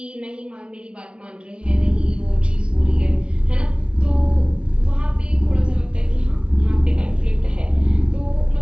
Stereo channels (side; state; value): left; late; 0.058 ms